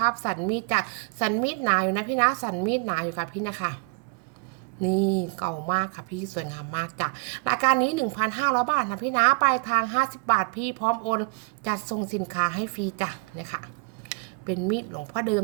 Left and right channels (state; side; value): quieter; left; 33.9 dB